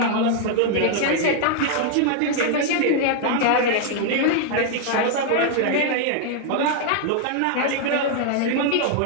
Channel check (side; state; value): both; different; correlation 0.00